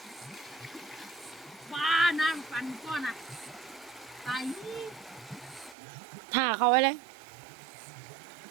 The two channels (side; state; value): left; drops out; at 5.8 s